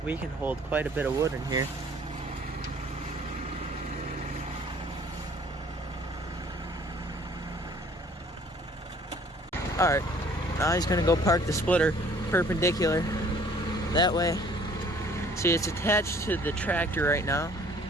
We can hold quite a bit of wood in here. Alright, now he's gonna go park the splitter perpendicular that way. See, it's attached to the tractor right now,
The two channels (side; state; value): both; normal; correlation 0.55